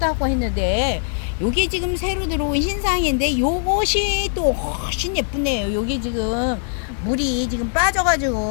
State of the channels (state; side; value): silent; right; 61 dB below the other